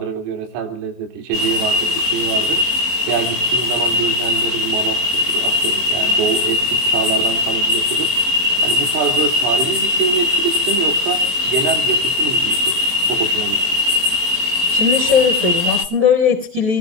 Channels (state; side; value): late; left; 23 ms